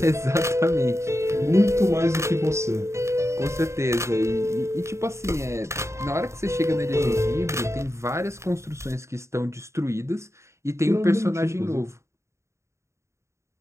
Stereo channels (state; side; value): late; left; 0.14 ms